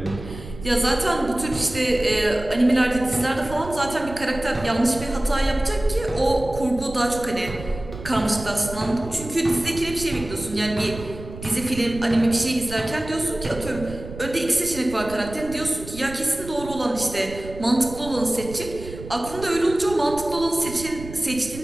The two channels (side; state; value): right; noise; rumble, 13 dB below the sound